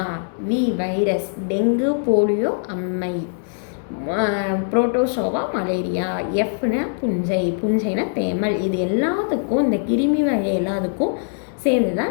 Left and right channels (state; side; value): silent; right; digital silence